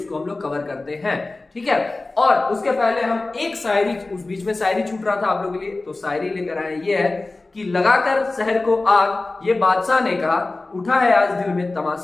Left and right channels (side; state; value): right; quieter; 3.2 dB